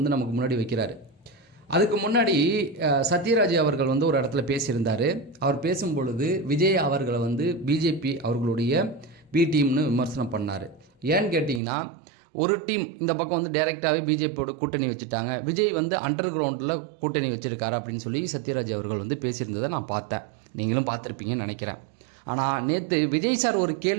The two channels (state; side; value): drops out; left; at 11.6 s